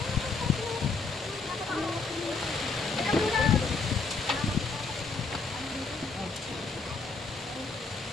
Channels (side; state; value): right; quieter; 4.2 dB